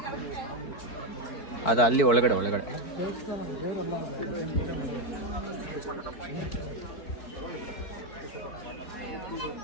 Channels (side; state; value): right; late; 4.6 ms